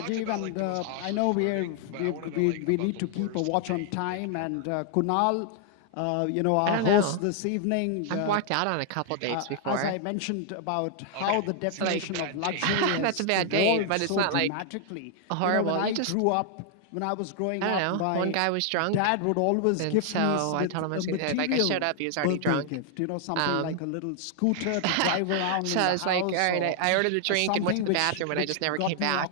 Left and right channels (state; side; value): different; both; correlation 0.00